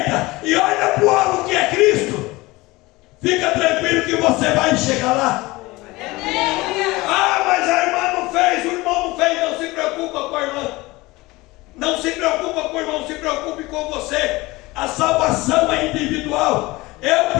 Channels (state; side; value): quieter; right; 21.2 dB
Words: e olha para o alvo que é Cristo, fica tranquilo que você vai chegar lá. Ah, mas a irmã não fez, o irmão não fez. Não se preocupa com a irmã, não se preocupa com o irmão, se preocupe com você. A salvação é individual. Eu